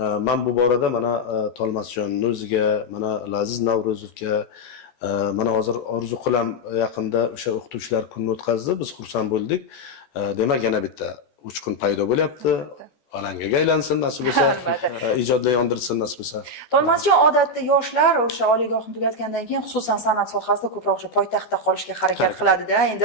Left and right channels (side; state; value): right; late; 14 ms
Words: Men bu borada mana Tolmasjonning o'ziga, mana Laziz Navruzovga, mana hozir orzu qilam yaqinda o'sha o'qituvchilar kunini o'tkazdi. Biz xursand bo'ldik. Demak, yana bitta uchqun paydo bo'lyapti. Alangaga aylansin nasib bo'lsa, ijodlar yondirsin nasib bo'lsa. Tolmasjon odatda yoshlar o'sha oliygohni tugatgandan keyin xususan san'at sohasida ko'proq o'sha poytaxtda qolishga harakat qiladi-da. Endi